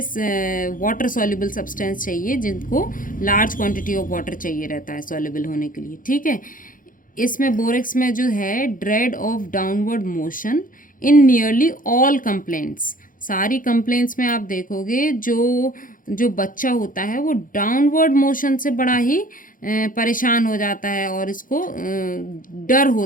वाटर सॉल्युबल सब्सटेंस चाहिए जिनको लार्ज क्वांटिटी ऑफ वाटर चाहिए रहता है सॉल्युबल होने के लिए, ठीक है। इसमें बोरेक्स में जो है dread of downward motion in nearly all complaints. सारी कंप्लेंट्स में आप देखोगे जो जो बच्चा होता है वो डाउनवर्ड मोशन से बड़ा ही परेशान हो जाता है और इसको डर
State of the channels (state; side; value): late; right; 0.40 ms